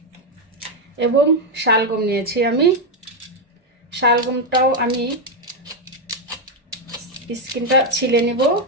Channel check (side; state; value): both; normal; correlation 0.04